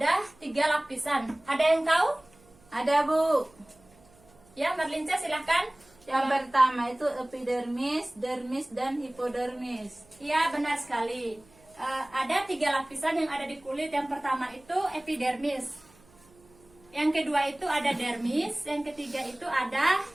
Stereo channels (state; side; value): noise; right; hum, 28 dB below the sound